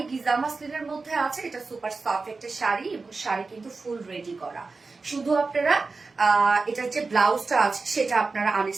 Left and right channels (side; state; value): left; quieter; 4.0 dB